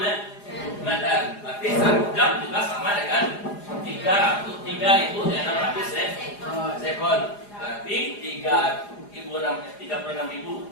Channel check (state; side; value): late; right; 4.9 ms